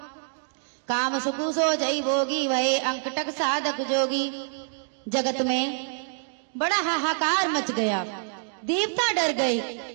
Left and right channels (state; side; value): silent; left; 61 dB below the other